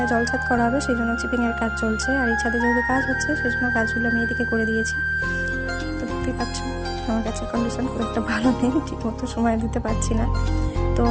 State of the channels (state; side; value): identical; both; correlation 1.00